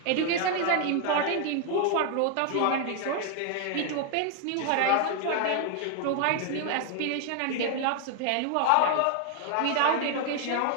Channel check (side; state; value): both; different; correlation 0.00